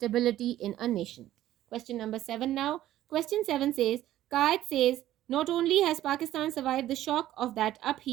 in a nation. Question number 7 now. Question 7 says, Qaid says, not only has Pakistan survived the shock of that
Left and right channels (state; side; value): quieter; left; 13.6 dB